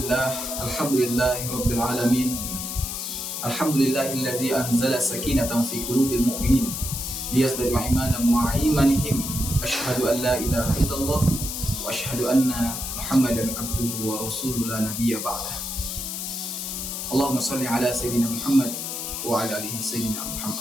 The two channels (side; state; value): left; noise; hiss, 5 dB below the sound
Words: rabbil alamin. Alhamdulillahillazi anzala sakinatan fi qulubil mu'minin liyazdadu imanan ma'a imanihim. Asyhadu an la ilaha illallah wa asyhadu anna Muhammadan abduhu wa rasuluhu la nabiyya ba'dah. Allahumma shalli ala sayyidina Muhammad wa ala alihi sayyidina